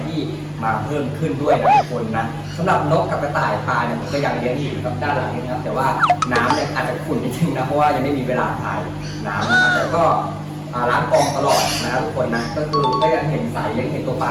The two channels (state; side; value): identical; both; correlation 1.00